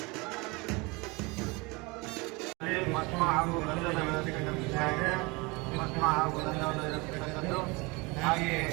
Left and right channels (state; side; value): quieter; left; 26.3 dB